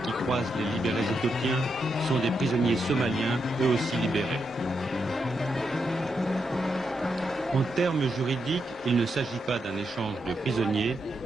qui croisent les libérés éthiopiens sont des prisonniers somaliens, eux aussi libérés. En termes juridiques, il ne s'agit pas d'un échange de prisonniers,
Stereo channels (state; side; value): normal; both; correlation 0.83